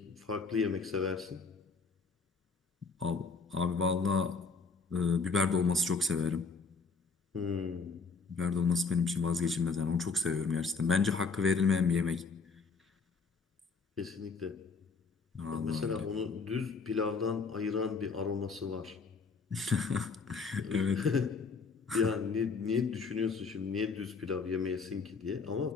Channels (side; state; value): right; quieter; 4.7 dB